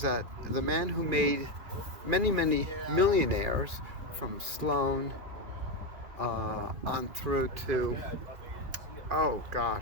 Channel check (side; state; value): left; late; 2.4 ms